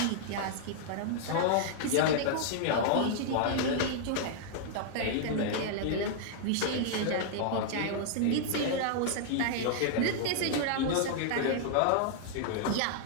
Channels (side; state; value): both; different; correlation -0.01